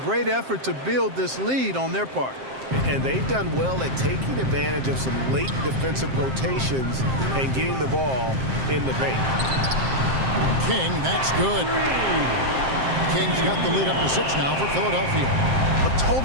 great effort to build this lead on their part. And they've done well at taking advantage of some late defensive rotations and getting the ball in the paint. King, that's good. King's got the lead up to 6 now for Philadelphia. A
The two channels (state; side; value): late; left; 7.6 ms